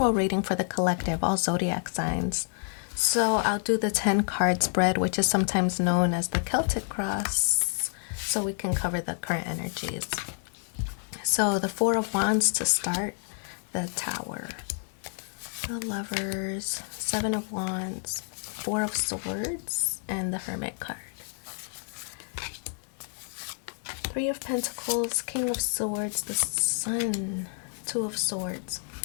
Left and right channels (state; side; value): silent; right; 58 dB below the other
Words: reading for the collective, all zodiac signs. So I'll do the 10 card spread, which is sometimes known as the Celtic cross, so we can cover the current energies. So the Four of Wands to start, the Tower, the Lovers, Seven of Wands, Four of Swords, and the Hermit card. Three of Pentacles, King of Swords, the Sun, Two of Swords.